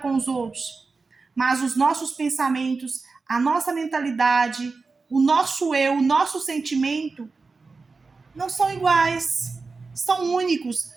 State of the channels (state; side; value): quieter; left; 4.2 dB